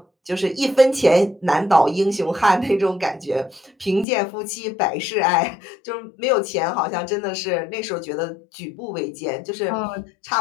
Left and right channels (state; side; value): drops out; right; at 4.0 s